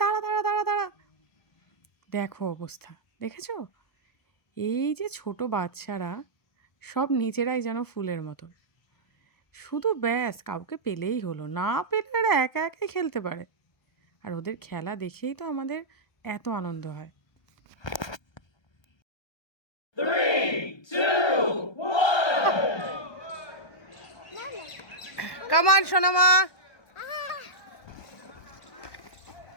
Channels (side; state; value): right; late; 1.3 ms